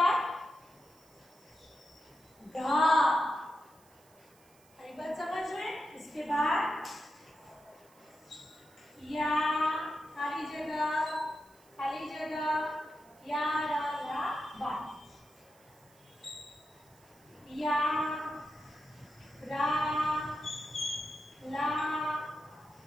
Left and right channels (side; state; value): right; noise; hiss, 29 dB below the sound